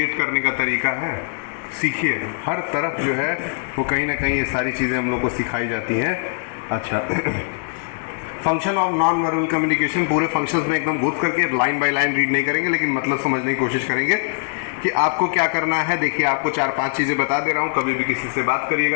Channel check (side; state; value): right; silent; digital silence